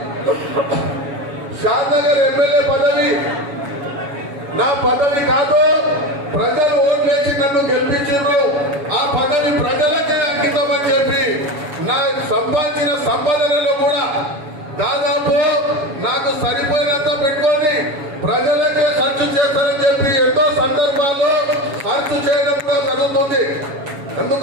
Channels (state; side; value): late; left; 7.1 ms